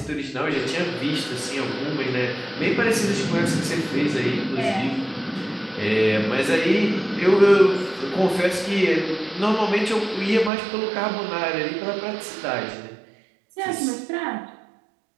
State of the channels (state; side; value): drops out; left; at 10.5 s